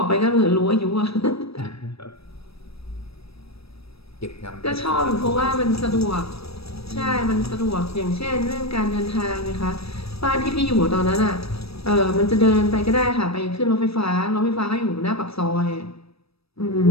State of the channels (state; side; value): late; right; 0.78 ms